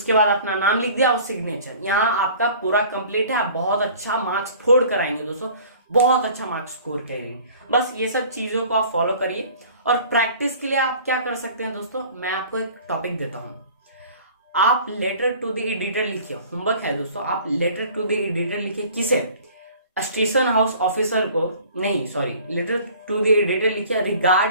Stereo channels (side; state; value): both; inverted; correlation -0.48